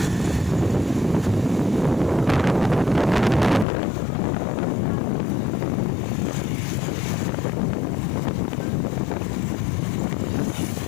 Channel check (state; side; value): drops out; right; at 3.7 s